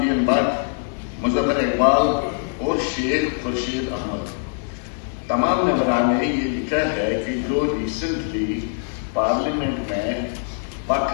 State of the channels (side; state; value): right; silent; 64 dB below the other